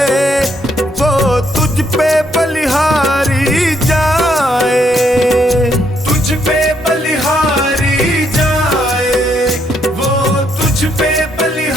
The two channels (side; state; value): both; normal; correlation 0.73